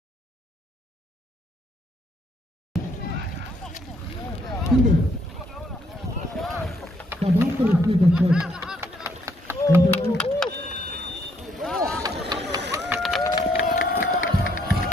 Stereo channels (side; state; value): both; normal; correlation 0.70